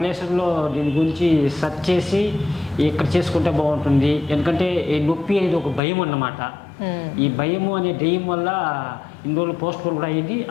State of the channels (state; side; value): drops out; right; at 5.8 s